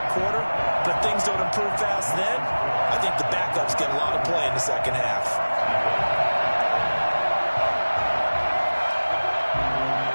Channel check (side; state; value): both; inverted; correlation -1.00